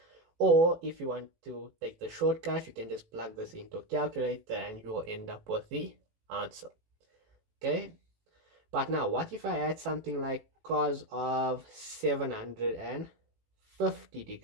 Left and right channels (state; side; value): late; left; 18 ms